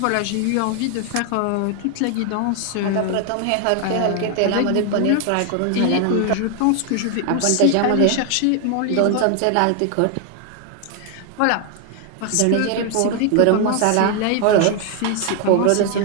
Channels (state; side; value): different; both; correlation 0.00